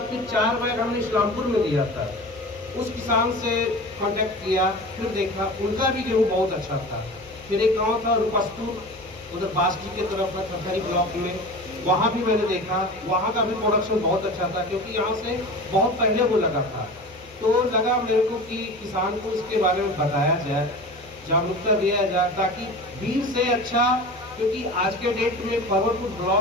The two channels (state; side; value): normal; both; correlation 0.34